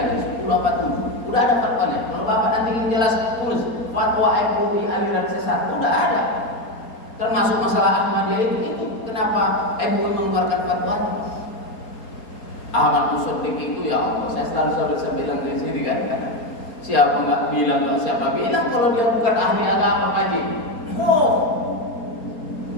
10 apa 7. Udah ada fatwanya. Kalau Bapak nanti ingin jelas, tulis fatwa MUI aliran sesat. Udah ada. Termasuk masalah Ahmadiyah itu kenapa MUI mengeluarkan fatwanya? Ahmad Musaddiq itu, ya Allah, saya selalu bilang dari sini kan. Siapa nggak bilang, siapa bilang kalau dia bukan ahli agama kaji? Oh,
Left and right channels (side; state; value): right; late; 4.3 ms